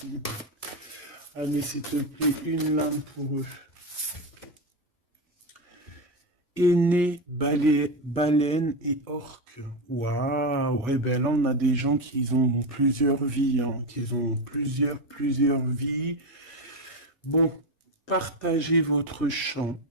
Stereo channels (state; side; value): normal; both; correlation 0.14